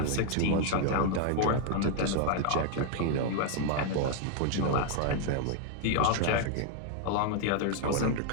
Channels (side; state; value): both; different; correlation 0.00